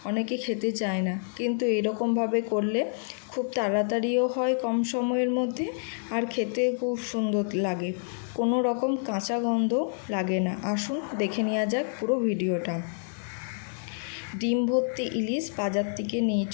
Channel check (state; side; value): silent; right; digital silence